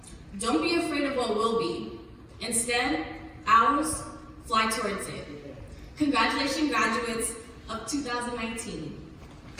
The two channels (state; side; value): identical; both; correlation 1.00